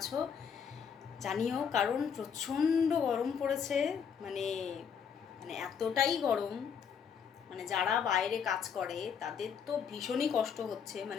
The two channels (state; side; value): quieter; right; 7.1 dB